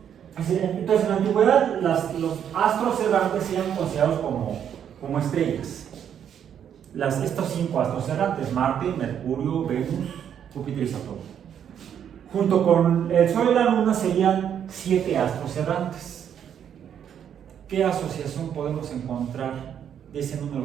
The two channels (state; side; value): quieter; left; 8.9 dB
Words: Entonces, en la antigüedad, los astros errantes eran considerados como estrellas. Estos 5 astros errantes: Marte, Mercurio, Venus, Júpiter y Saturno. Junto con el Sol y la Luna serían 7 astros errantes. ¿Qué asociación podemos encontrar de ese